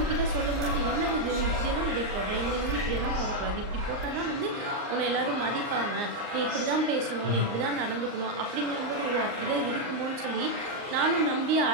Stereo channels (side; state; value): left; late; 39 ms